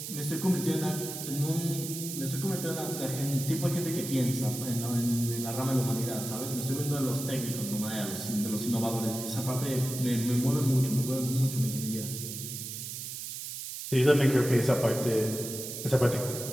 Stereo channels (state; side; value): noise; right; hiss, 7 dB below the sound